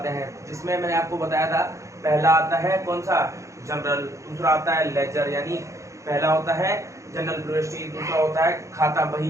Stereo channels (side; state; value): left; late; 0.15 ms